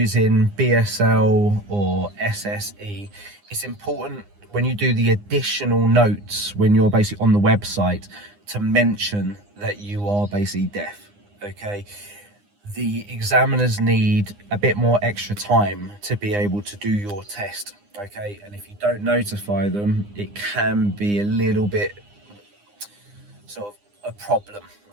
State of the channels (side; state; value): left; late; 9.8 ms